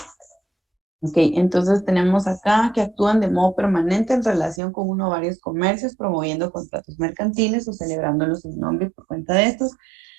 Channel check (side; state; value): left; drops out; at 4.6 s